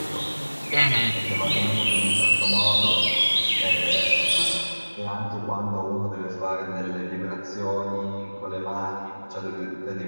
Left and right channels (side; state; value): both; inverted; correlation -1.00